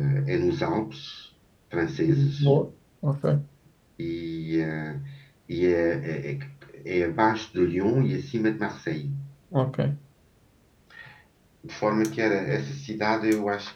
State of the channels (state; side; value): identical; both; correlation 1.00